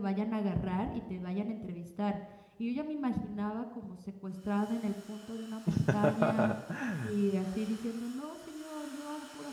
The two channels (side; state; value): both; identical; correlation 1.00